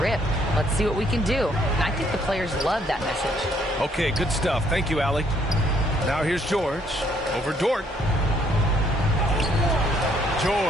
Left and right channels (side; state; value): both; normal; correlation 0.67